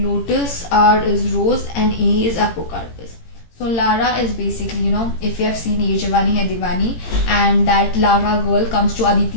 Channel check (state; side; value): late; right; 18 ms